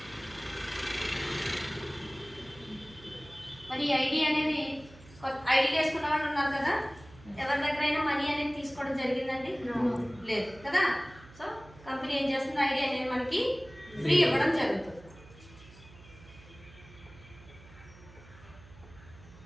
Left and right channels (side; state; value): right; noise; hum, 21 dB below the sound